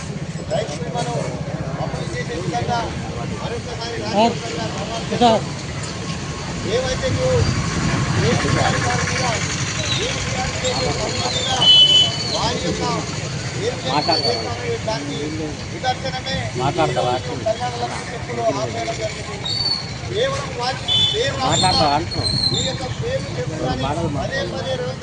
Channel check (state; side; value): identical; both; correlation 1.00